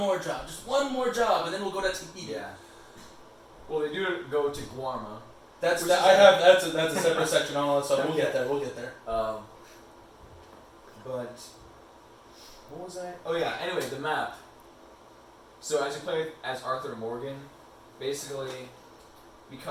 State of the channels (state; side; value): identical; both; correlation 1.00